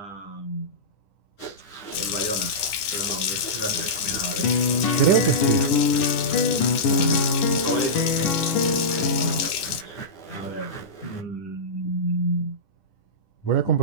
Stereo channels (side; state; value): right; late; 10 ms